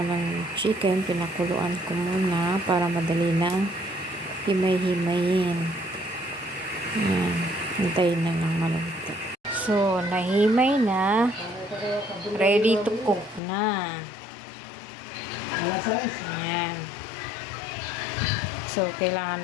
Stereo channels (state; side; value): drops out; right; at 13.4 s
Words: ng chicken. Pinakuluan ko muna para madali na himay-himayin. Ayan. Hintayin na lang maluto. So, nahimay na. Ready to cook na. Ayan. So,